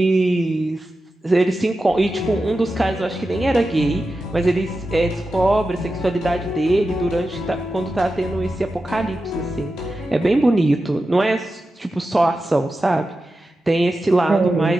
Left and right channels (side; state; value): both; normal; correlation 0.92